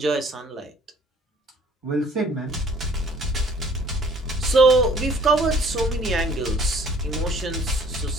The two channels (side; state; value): both; normal; correlation 0.55